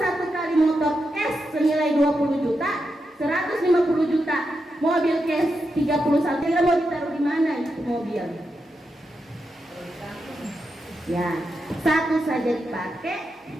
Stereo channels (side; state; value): both; normal; correlation 0.86